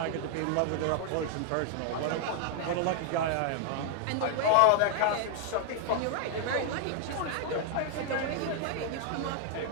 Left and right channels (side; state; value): both; different; correlation 0.00